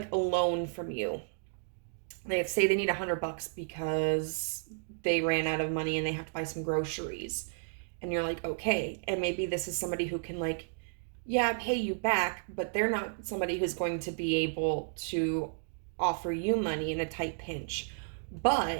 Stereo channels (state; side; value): silent; left; digital silence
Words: a loan from you. They say they need $100 because they ran out of money and they have to buy some groceries. And you're like, okay. And maybe this is somebody who can, like, yeah, pay you back, but they're not somebody who's going to be able to offer you money in a tight pinch.